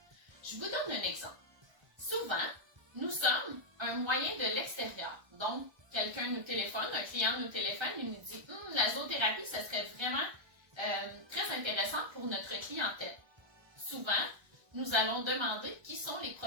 Je vous donne un exemple. Souvent, nous sommes un moyen de l'extérieur. Donc, quelqu'un nous téléphone, un client nous téléphone et nous dit « La zoothérapie, ça serait vraiment très intéressant pour notre clientèle. » Souvent, nous allons demander qui sont les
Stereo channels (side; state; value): left; late; 1.3 ms